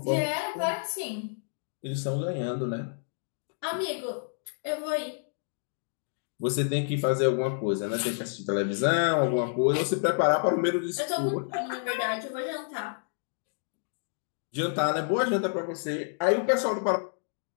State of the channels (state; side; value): silent; right; digital silence